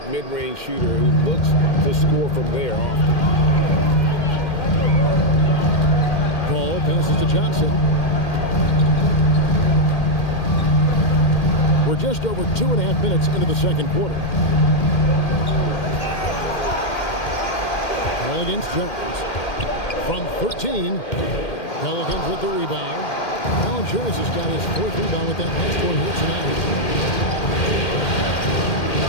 mid-range shooter who looks to score from there often. Paul passes to Johnson. We're just over 2.5 minutes into the second quarter. Ball against Jones. From 13, Pelicans with the rebound. Valanciunas has got his 4th rebound with that last one here tonight.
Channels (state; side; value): late; right; 2.1 ms